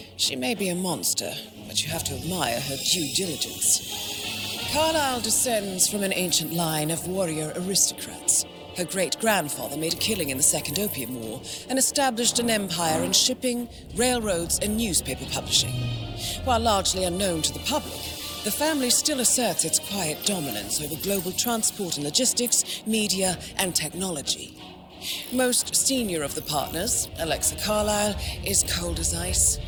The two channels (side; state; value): both; identical; correlation 1.00